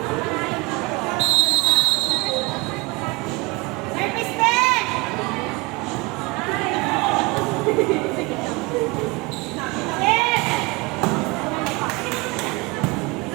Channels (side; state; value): left; quieter; 25.2 dB